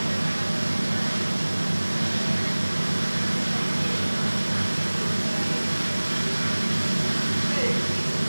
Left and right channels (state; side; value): inverted; both; correlation -1.00